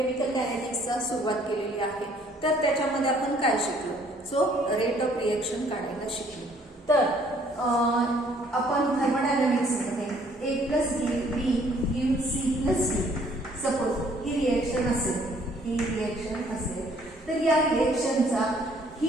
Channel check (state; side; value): normal; both; correlation 0.61